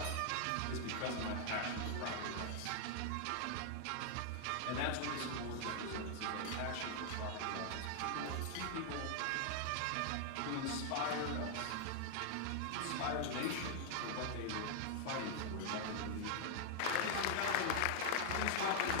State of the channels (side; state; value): both; different; correlation 0.00